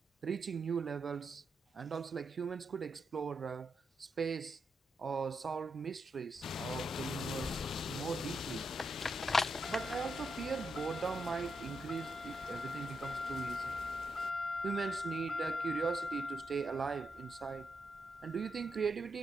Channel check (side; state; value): both; normal; correlation 0.83